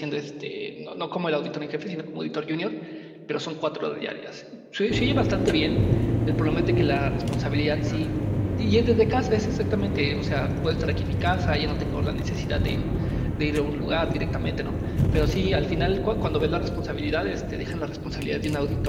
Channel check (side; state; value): both; identical; correlation 1.00